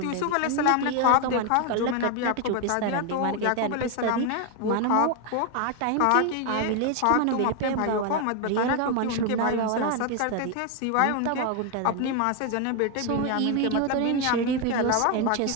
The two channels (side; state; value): both; different; correlation 0.01